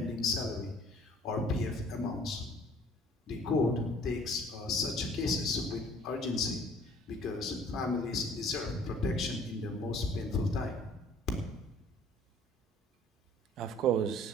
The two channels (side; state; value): both; normal; correlation 0.54